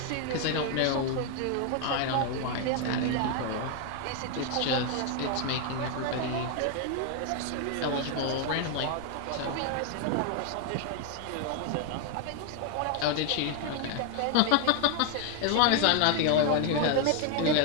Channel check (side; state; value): both; different; correlation 0.01